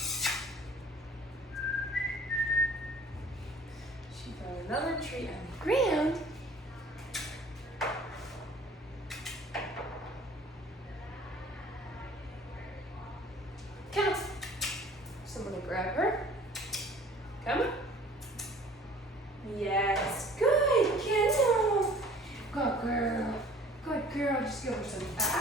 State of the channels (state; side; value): normal; both; correlation 0.50